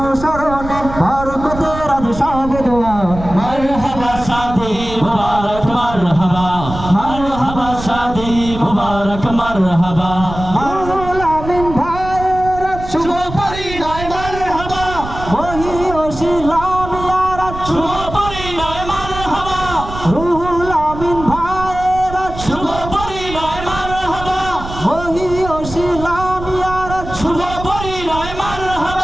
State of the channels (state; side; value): noise; right; rumble, 10 dB below the sound